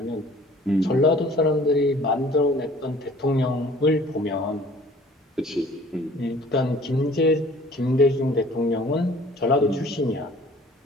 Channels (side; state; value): both; normal; correlation 0.51